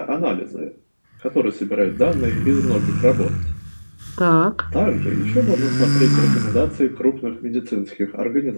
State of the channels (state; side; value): inverted; both; correlation -1.00